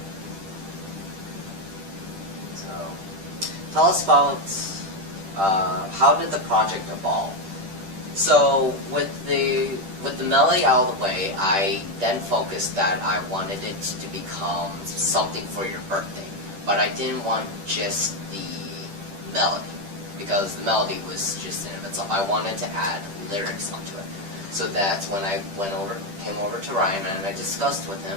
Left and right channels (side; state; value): left; late; 10 ms